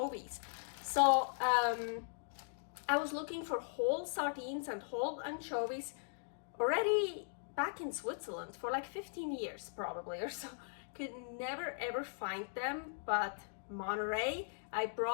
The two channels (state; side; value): silent; right; digital silence